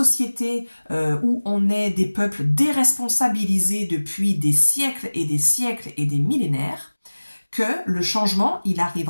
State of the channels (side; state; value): both; inverted; correlation -1.00